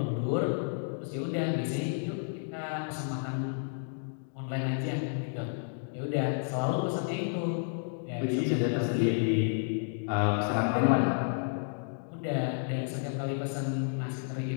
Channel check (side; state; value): right; silent; digital silence